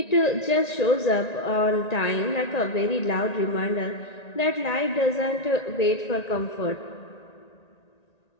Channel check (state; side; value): late; right; 1.9 ms